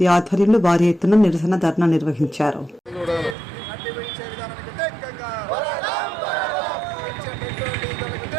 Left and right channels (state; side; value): drops out; left; at 3.4 s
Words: ఆధ్వర్యంలో భారీ ఎత్తున నిరసన ధర్నా నిర్వహించారు.